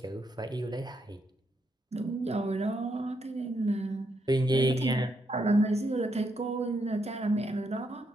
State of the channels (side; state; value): both; normal; correlation 0.78